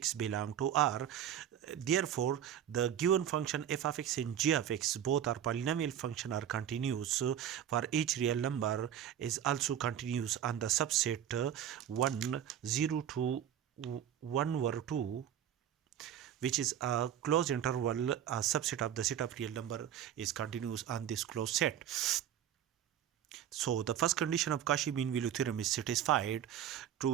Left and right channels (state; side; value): quieter; left; 10.1 dB